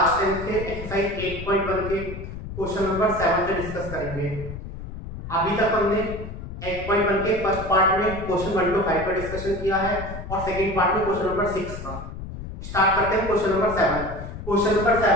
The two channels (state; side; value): noise; left; rumble, 10 dB below the sound